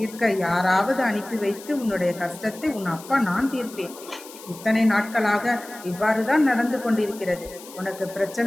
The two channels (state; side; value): noise; left; hiss, 17 dB below the sound